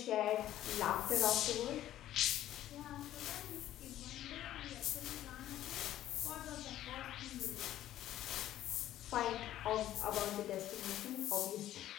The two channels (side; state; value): right; quieter; 13.0 dB